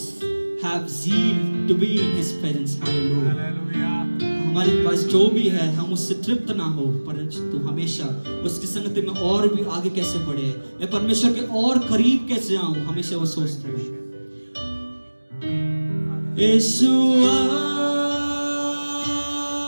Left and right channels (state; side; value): inverted; both; correlation -1.00